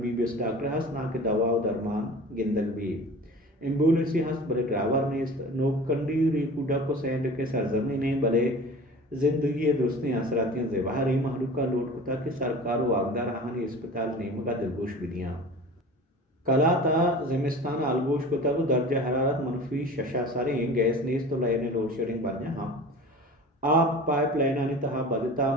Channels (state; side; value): normal; both; correlation 0.38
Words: ڈاکٹر ہست نا کہ دوا و درمان گندگ بھی ایمبولنسی ہست بلے ڈرائیور نیست نوکنڈی ریکو ڈک کو سینڈ کے سرزمین نے بلے زندگی درستیں اثراتیں زبہر ای محلوکہ لوٹ کتا کہ سرکار و آگدار آہانی اسپتال نیمگا دلگوش بدیاں کلا تا زمستان آلگوش کتا کو درجہ حرارت منفی 6 ساریں گیس نیست تو لائن لوڈ شیڈنگ بڑھنے ہاں آپ پائپ لائنانی تہا بدتا